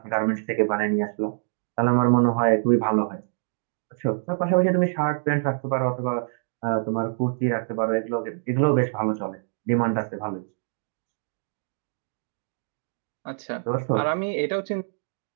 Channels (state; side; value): silent; left; digital silence